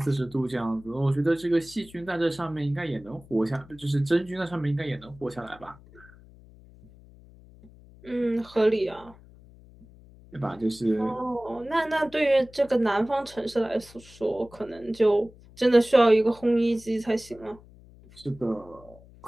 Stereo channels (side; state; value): left; noise; hum, 23 dB below the sound